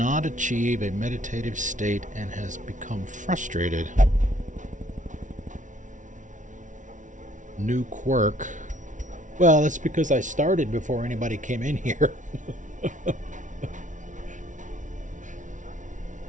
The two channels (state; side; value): late; left; 0.37 ms